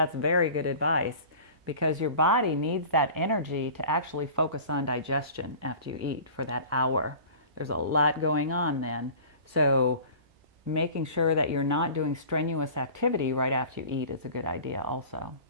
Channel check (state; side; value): late; left; 2.3 ms